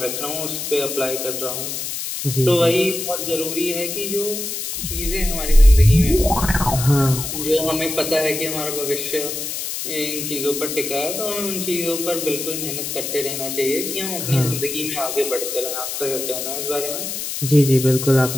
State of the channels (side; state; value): left; noise; hiss, 5 dB below the sound